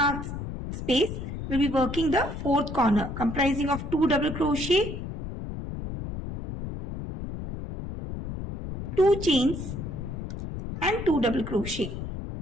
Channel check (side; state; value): left; noise; rumble, 7 dB below the sound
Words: space we will be working the fourth corner comprising of 2 double crochet, 2 chains and 2 double crochet.